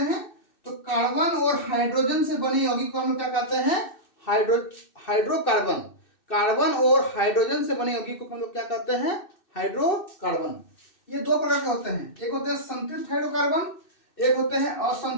तो कार्बन और हाइड्रोजन से बने यौगिक को हम लोग क्या कहते हैं? हाइड्रोकार्बन। कार्बन और हाइड्रोजन से बने यौगिक को हम लोग क्या कहते हैं? हाइड्रोकार्बन। ये दो प्रकार के होते हैं, एक होते हैं संतृप्त हाइड्रोकार्बन, एक होते हैं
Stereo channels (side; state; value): right; late; 2.6 ms